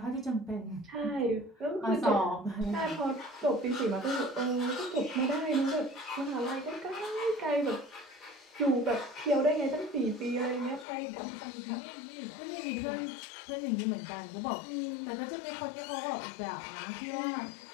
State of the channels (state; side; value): drops out; right; at 10.9 s